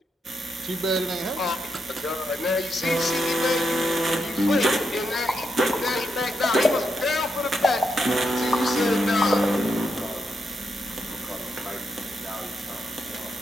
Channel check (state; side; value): normal; both; correlation 0.83